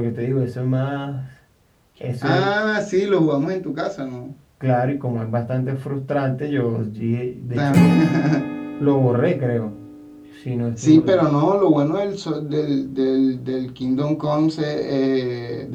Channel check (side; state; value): both; identical; correlation 1.00